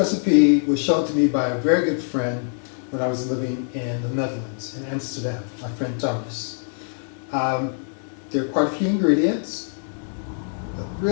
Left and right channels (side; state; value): right; silent; digital silence